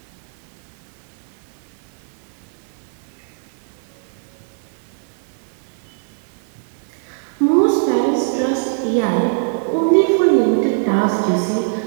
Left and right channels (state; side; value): silent; left; digital silence